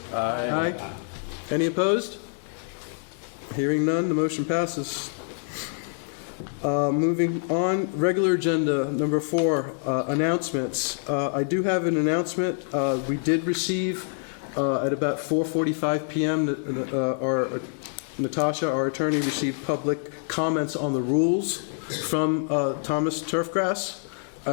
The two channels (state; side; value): silent; right; 61 dB below the other